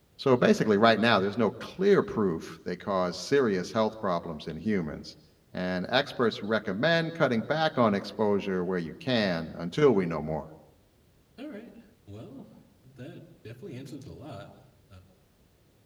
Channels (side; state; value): both; identical; correlation 1.00